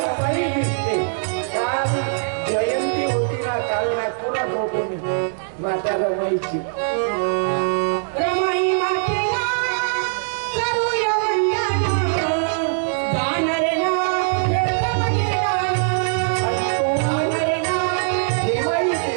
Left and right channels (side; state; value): left; silent; digital silence